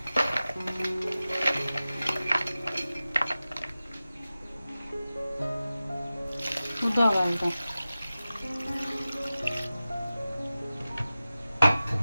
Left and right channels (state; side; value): inverted; both; correlation -0.95